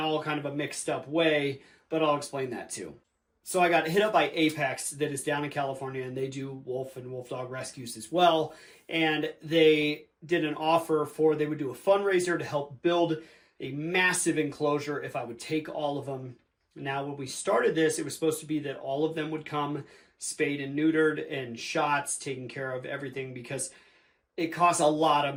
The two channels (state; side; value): identical; both; correlation 1.00